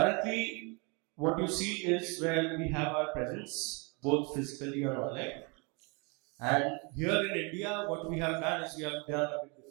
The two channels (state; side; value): quieter; left; 31.5 dB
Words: what you see is where we have our presence, both physically and online. And here in India, what we have done is we have done a bit